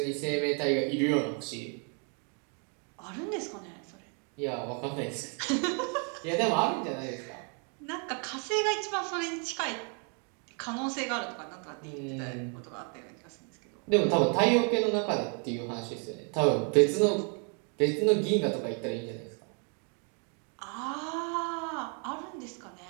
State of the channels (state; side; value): quieter; left; 39.3 dB